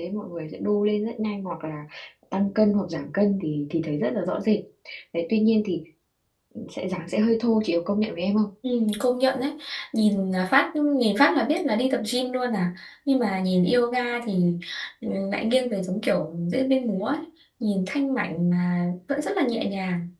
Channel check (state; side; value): identical; both; correlation 1.00